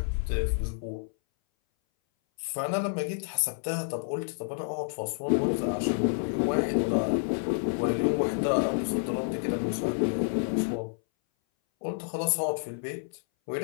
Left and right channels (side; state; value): right; silent; 58 dB below the other